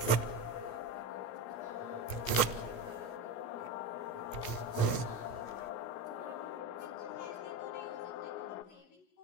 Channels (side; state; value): right; late; 16 ms